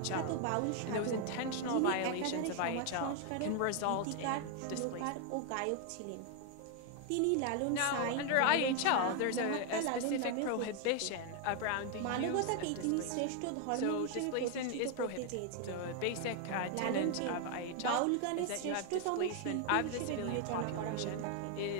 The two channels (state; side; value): different; both; correlation 0.01